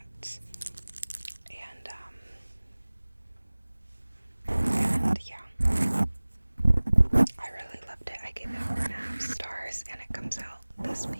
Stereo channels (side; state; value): both; inverted; correlation -1.00